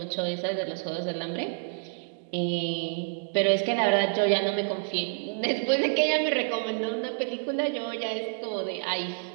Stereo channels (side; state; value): left; silent; digital silence